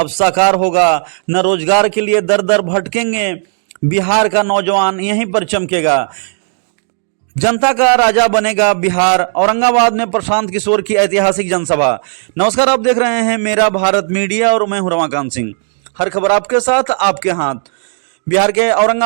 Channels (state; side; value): silent; left; 57 dB below the other